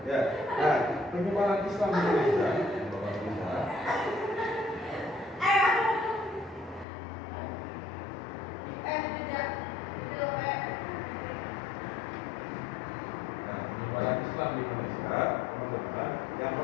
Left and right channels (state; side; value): drops out; right; at 6.9 s